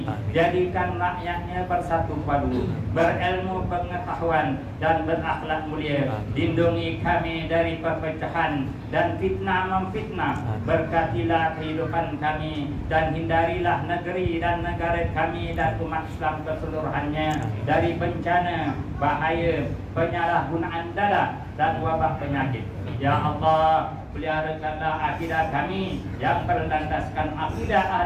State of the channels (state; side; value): identical; both; correlation 1.00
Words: Jadikan rakyatnya bersatu padu, berilmu pengetahuan dan berakhlak mulia. Lindungi kami dari perpecahan dan fitnah memfitnah. Berkatilah kehidupan kami dan hindarilah negeri dan negara kami dan umat Islam keseluruhannya dari bencana, bahaya, penyalahgunaan dada dan wabah penyakit. Ya Allah, peliharakanlah akidah kami yang berlandaskan akidah